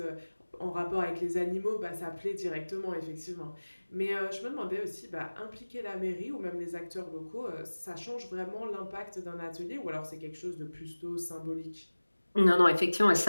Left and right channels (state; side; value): inverted; both; correlation -1.00